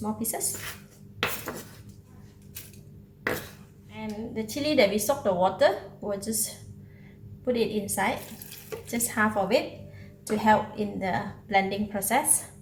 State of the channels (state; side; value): identical; both; correlation 1.00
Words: pieces. And the chili that we soaked the water, we'll just put it inside, just half of it to help in the blending process.